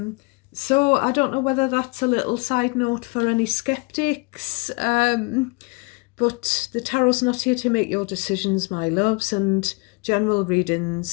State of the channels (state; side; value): quieter; right; 29.0 dB